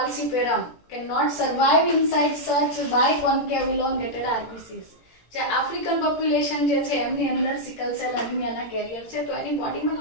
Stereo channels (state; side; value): late; right; 17 ms